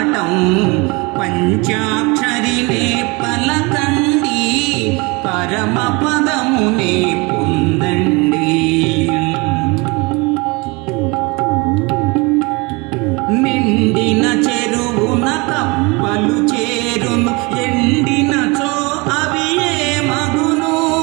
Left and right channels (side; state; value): left; quieter; 26.8 dB